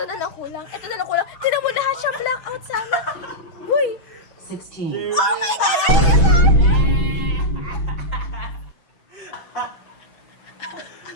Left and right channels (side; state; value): right; late; 6.1 ms